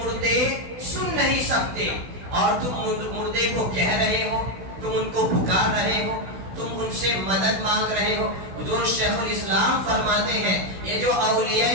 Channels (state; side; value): late; left; 16 ms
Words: سن نہیں سکتے اور تم مردے کو کہہ رہے ہو، تم ان کو پکار رہے ہو، تم ان سے مدد مانگ رہے ہو۔ حضور شیخ الاسلام فرماتے ہیں یہ جو اولیاء